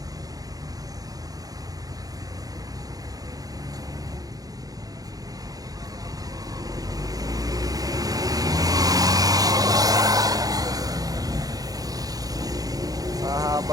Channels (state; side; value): late; left; 0.18 ms